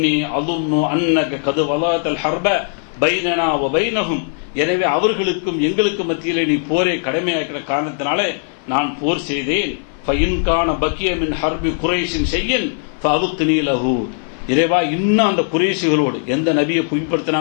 அظن அன்னக கத் வலாத்தல் ஹர்ப பைனனா வ பைனஹும், எனவே அவர்களுக்கும் எங்களுக்கும் மத்தியிலே நீ போரை கடமையாக்கிற காரணத்தினாலே நான் போர் செய்தேன். ஃபஇன் கான பக்கிய மின் ஹர்பி குரைஷின் ஷையன் ஃபஅப்கினி லஹு, இறைவா, இன்னும் அந்த குறைஷிகளோடு எந்த நபியை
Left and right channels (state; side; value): silent; right; 56 dB below the other